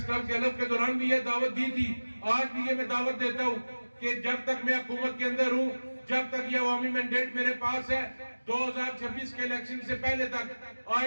کلب کے حلف کے دوران بھی یہ دعوت دی تھی, آج بھی یہ میں دعوت دیتا ہوں کہ جب تک میں حکومت کے اندر ہوں, جب تک یہ عوامی مینڈیٹ میرے پاس ہے, 2026 کے الیکشن سے پہلے تک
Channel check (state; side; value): inverted; both; correlation -1.00